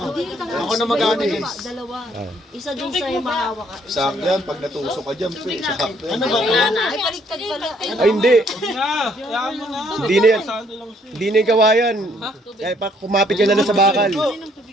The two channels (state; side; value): normal; both; correlation 0.66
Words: Ako na mag-ano din. Dalawa. Isa dun sa yung mahawa ka. Sakto yan, pag natusok ka dyan, pe, sakto yan. Ano ba? Ay, baliktad pala. Ay hindi, Na, kaya mo na. hindi na yan. Hindi na yung gawayan. Kaya pa kumapit ka na lang sa bakal.